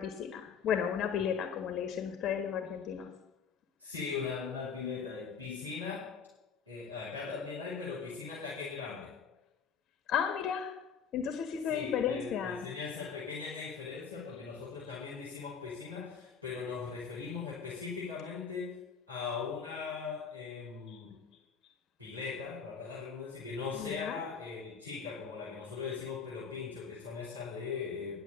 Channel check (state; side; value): quieter; right; 6.5 dB